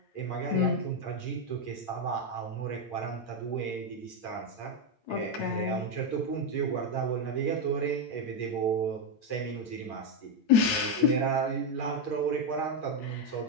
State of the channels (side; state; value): right; late; 8.7 ms